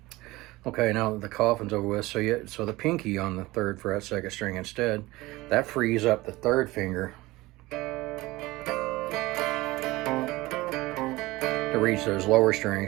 Okay, now the coffin's over with, so the pinky on the 3rd fret, 2nd string instead, that frees up the 3rd finger to reach those lower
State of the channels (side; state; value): left; quieter; 20.0 dB